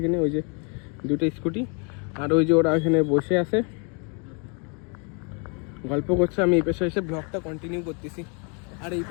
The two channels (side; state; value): right; quieter; 36.1 dB